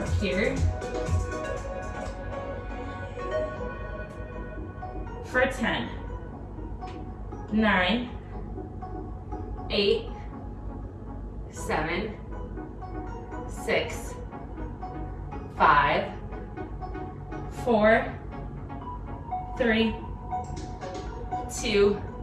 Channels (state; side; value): identical; both; correlation 1.00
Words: here. For 10, 9, 8, 7, 6, 5, 4, 3, 2,